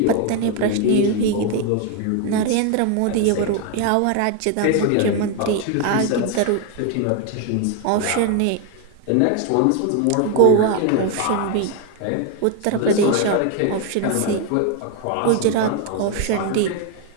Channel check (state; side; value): different; both; correlation 0.01